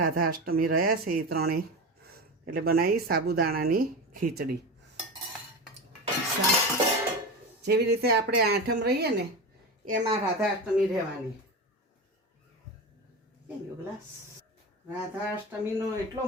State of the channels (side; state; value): both; normal; correlation 0.24